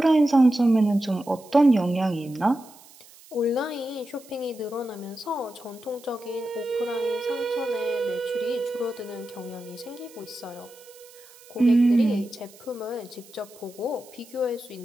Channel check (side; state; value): right; noise; hiss, 23 dB below the sound